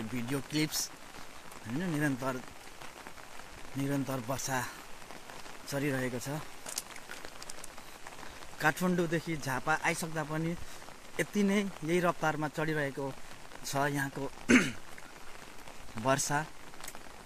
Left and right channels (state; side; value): identical; both; correlation 1.00